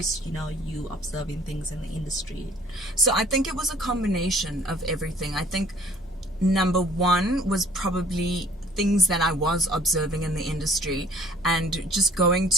you observing things in the industry? So I think it was a combination of everything. I think number one was probably things that I was observing in the industry, and just going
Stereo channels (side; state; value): right; noise; hum, 28 dB below the sound